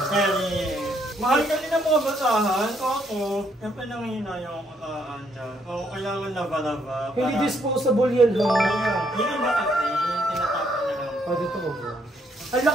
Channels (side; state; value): both; normal; correlation 0.71